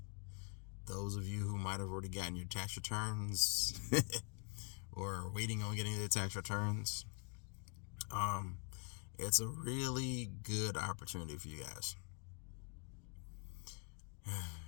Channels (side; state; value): right; quieter; 34.3 dB